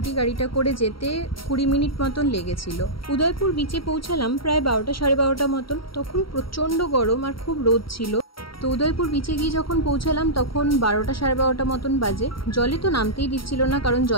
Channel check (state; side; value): late; right; 0.74 ms